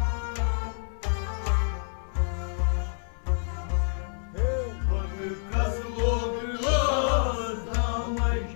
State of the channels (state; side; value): silent; right; 59 dB below the other